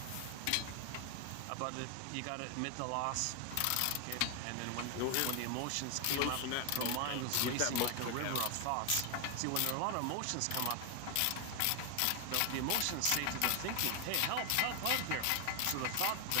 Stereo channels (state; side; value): different; both; correlation 0.01